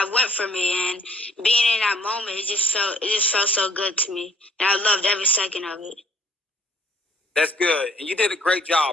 went for me, and being in that moment, it just felt so good to me, and I loved every second of it. That's good, and you did a great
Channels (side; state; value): both; normal; correlation 0.59